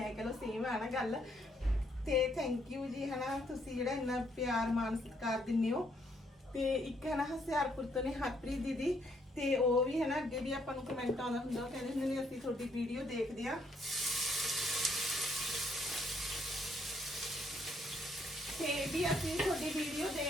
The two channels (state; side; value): normal; both; correlation 0.71